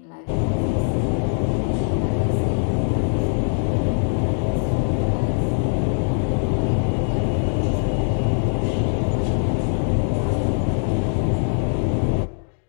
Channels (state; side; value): silent; right; digital silence